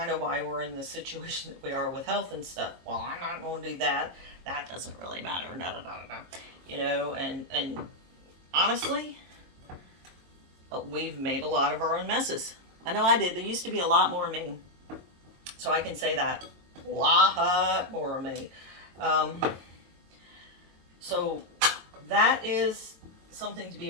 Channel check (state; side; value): late; left; 22 ms